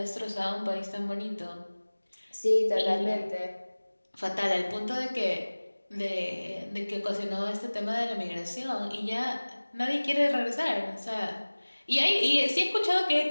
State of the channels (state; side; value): inverted; both; correlation -1.00